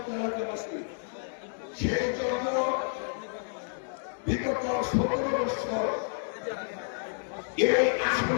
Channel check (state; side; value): silent; right; digital silence